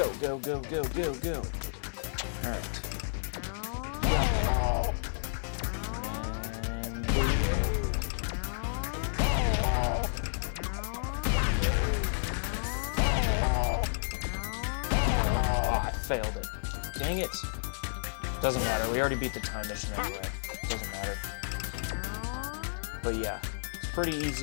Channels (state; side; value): silent; right; 57 dB below the other